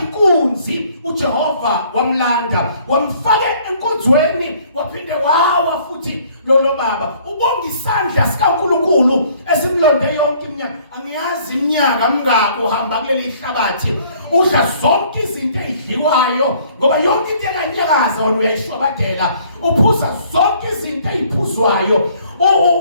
inkunzi uJehova wamlanda wamfaka enkonzweni waphinde wawa futhi lo baba ubonga isandla sikaNkulunkulu esimlonde yonke iminyaka angiyazi iminyaka mingako uhamba kuleli hlabathi udla zonke izinto ezidliwayo ngoba yonke into ekanyakaza wena uyayishwabadela uphuza zonke izinto eziphuzwayo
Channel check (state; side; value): inverted; both; correlation -0.59